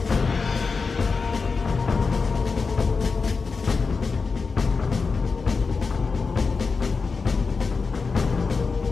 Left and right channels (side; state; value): right; quieter; 4.7 dB